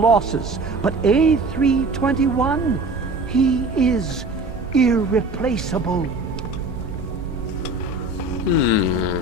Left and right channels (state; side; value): quieter; left; 3.0 dB